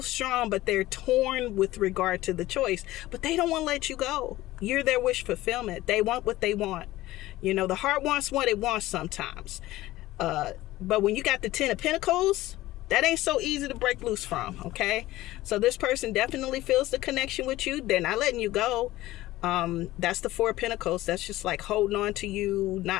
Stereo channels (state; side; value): quieter; right; 16.8 dB